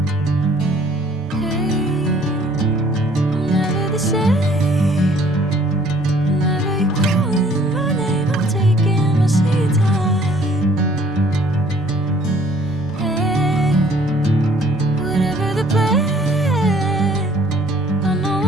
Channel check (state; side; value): normal; both; correlation 0.57